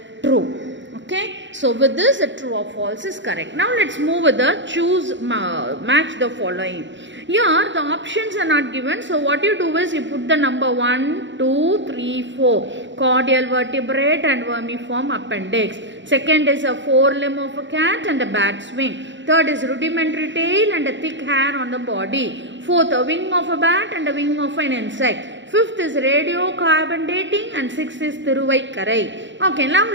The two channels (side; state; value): left; late; 0.54 ms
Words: true. Okay, so with this the true or false is correct. Now let's move with the choose match the following. Here the options are not given, so what you do is you put the number 1, 2, 3, 4 cordial vertebrate and vermiform appendix. Second is a forelimb of a cat and a bat's wing. Third is rudimentary tail and a thick hair on the body. Fourth, a wing of a bat and a wing of an insect. Fifth is radiocarbon dating, and sixth is Thiruvaikkarai. Okay, now